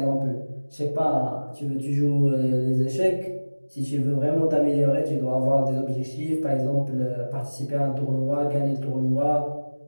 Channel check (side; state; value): both; inverted; correlation -1.00